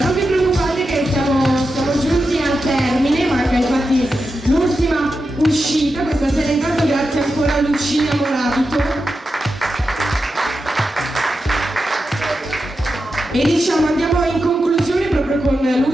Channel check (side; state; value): both; normal; correlation 0.90